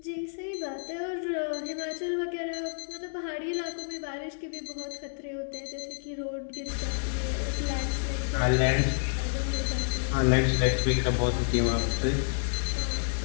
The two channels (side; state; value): right; silent; digital silence